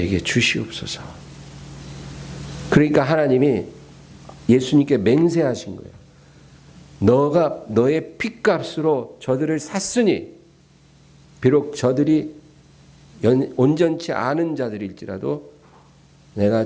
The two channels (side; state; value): both; identical; correlation 1.00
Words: 주시옵소서. 그러니까 하나님이 예수님께 맹세하신 거예요. 너가 너의 피값으로 저들을 샀으니 비록 저들이 온전치 않은 자들일지라도